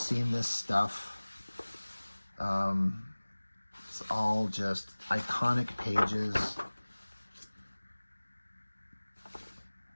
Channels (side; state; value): both; inverted; correlation -1.00